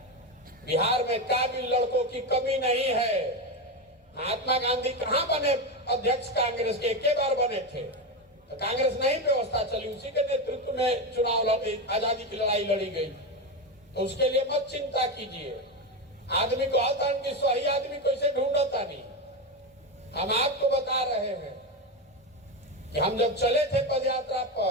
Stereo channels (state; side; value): normal; both; correlation 0.14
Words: बिहार में काबिल लड़कों की कमी नहीं है। महात्मा गांधी कहां बने अध्यक्ष कांग्रेस के? एक बार बने थे तो कांग्रेस नहीं व्यवस्था चली, उसी के नेतृत्व में चुनाव आजादी की लड़ाई लड़ी गई। तो उसके लिए मत चिंता कीजिए। आदमी को आता कि सही आदमी कैसे ढूंढता नहीं। हम आपको बता रहे हैं कि हम जब चले थे पदयात्रा